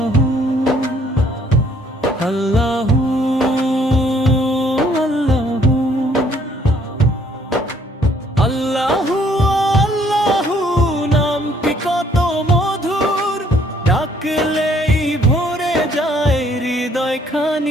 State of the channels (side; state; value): both; normal; correlation 0.63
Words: আল্লাহু আল্লাহু আল্লাহু আল্লাহু নামটি কত মধুর, ডাকলেই ভরে যায় হৃদয়